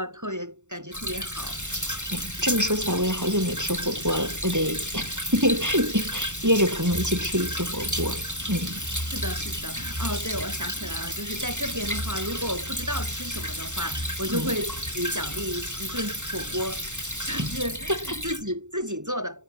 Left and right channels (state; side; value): late; left; 0.84 ms